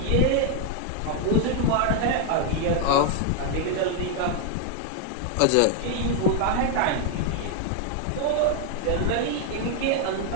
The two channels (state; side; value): different; both; correlation 0.00